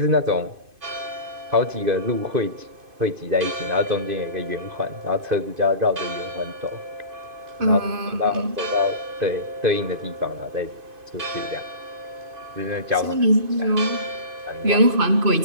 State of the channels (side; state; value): left; late; 2.5 ms